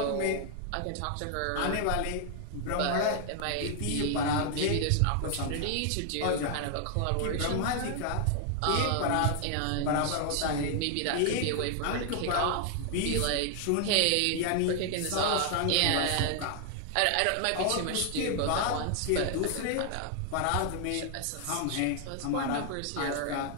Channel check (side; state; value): both; different; correlation 0.00